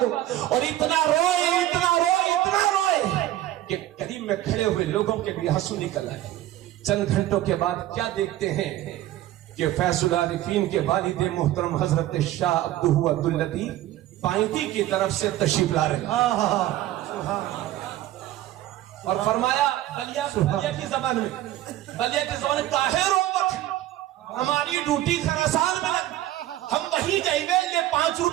اور اتنا روئے کہ قریب میں کھڑے ہوئے لوگوں کے بھی آنسو نکل آئے. چند گھنٹوں کے بعد کیا دیکھتے ہیں کہ فیض العارفین کے والد محترم حضرت شاہ عبدہ عبداللطیف پائنتی کی طرف سے تشریف لا رہے ہیں. اور فرمایا بلیا کی زبان میں کاہے روت، ہماری ڈیوٹی خراسان میں لگ، ہم وہیں جائیں گے، یہ 5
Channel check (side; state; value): left; quieter; 14.2 dB